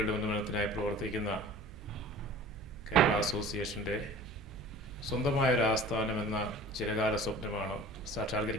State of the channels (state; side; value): noise; right; hum, 17 dB below the sound